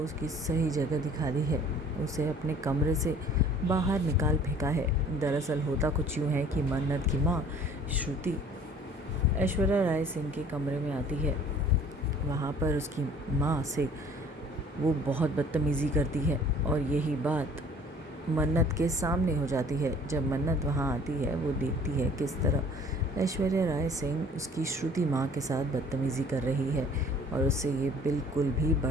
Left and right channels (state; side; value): normal; both; correlation 0.52